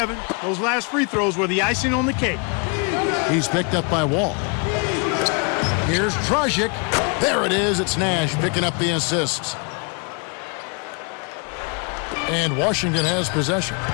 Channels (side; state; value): right; quieter; 35.3 dB